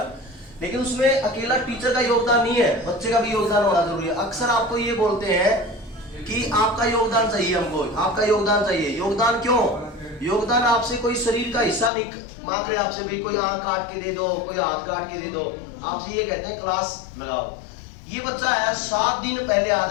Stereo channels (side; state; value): right; drops out; at 11.9 s